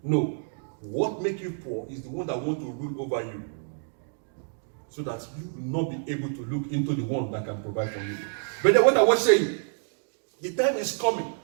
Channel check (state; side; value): silent; left; 59 dB below the other